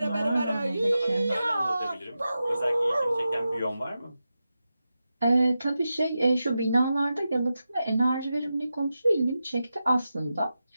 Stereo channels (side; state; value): both; inverted; correlation -0.91